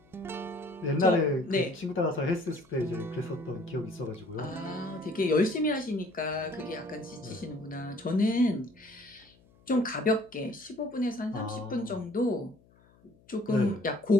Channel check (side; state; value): left; noise; hum, 29 dB below the sound